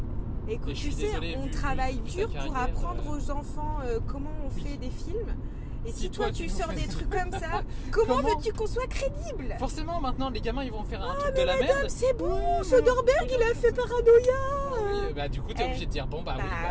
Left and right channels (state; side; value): identical; both; correlation 1.00